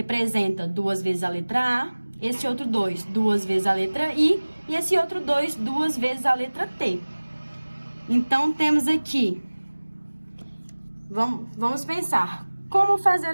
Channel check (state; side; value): inverted; both; correlation -1.00